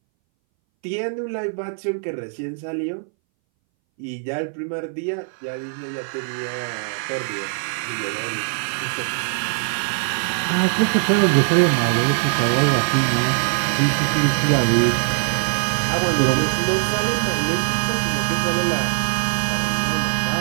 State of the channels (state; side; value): silent; left; 62 dB below the other